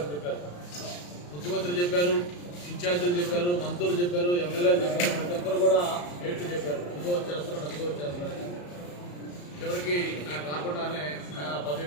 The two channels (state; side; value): late; right; 34 ms